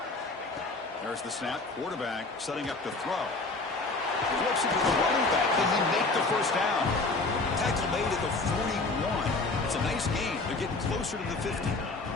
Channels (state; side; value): quieter; right; 3.5 dB